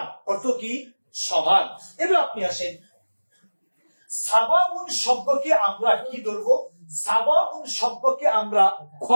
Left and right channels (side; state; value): both; inverted; correlation -1.00